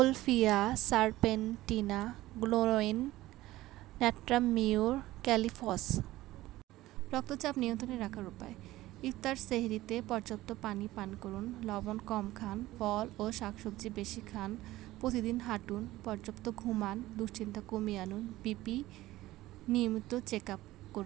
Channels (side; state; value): left; quieter; 16.8 dB